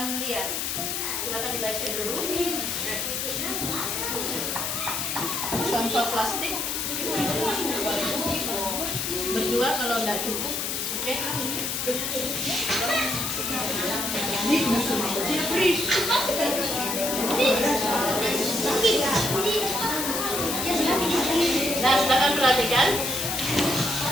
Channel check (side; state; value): left; noise; hiss, 1 dB below the sound